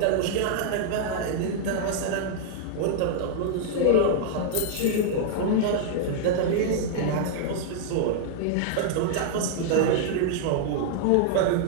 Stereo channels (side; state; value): both; different; correlation -0.01